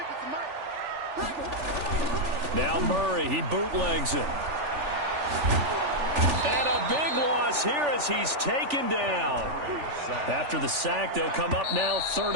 Now Murray, he bootlegs it. And a big loss here as he's taken down. After the sack, they'll come up now 3rd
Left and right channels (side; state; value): left; late; 3.4 ms